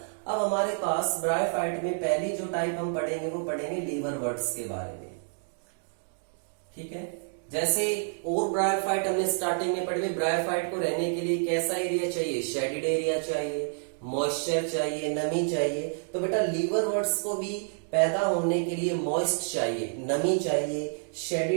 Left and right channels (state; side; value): silent; left; digital silence